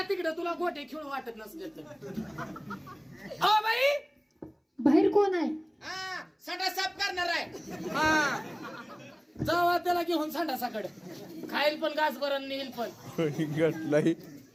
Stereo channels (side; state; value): both; identical; correlation 1.00